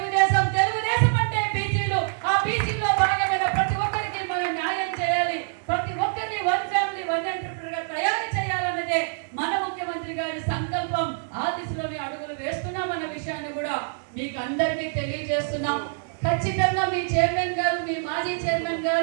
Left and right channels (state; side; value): silent; left; digital silence